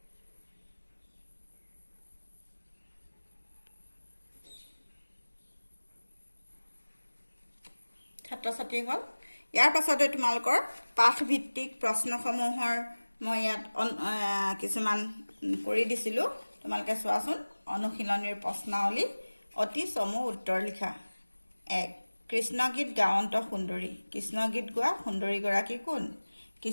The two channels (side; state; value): both; inverted; correlation -1.00